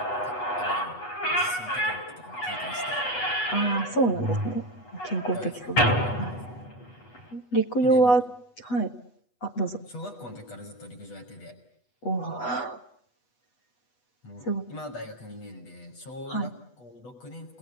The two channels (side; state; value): right; late; 8.2 ms